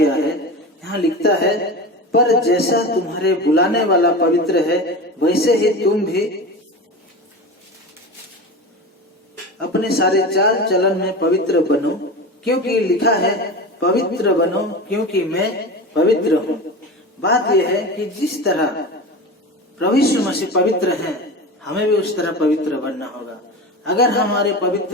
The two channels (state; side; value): normal; both; correlation 0.28